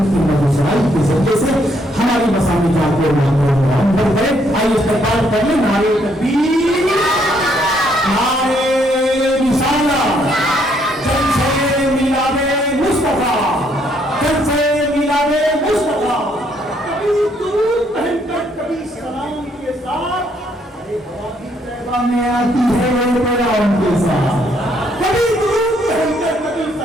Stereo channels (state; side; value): normal; both; correlation 0.70